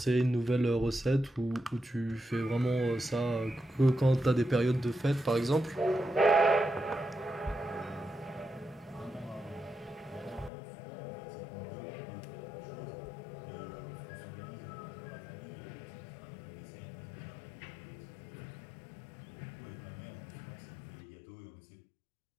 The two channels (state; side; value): drops out; right; at 10.5 s